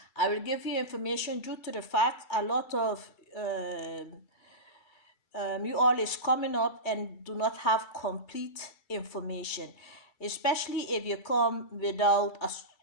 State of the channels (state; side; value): late; right; 2.3 ms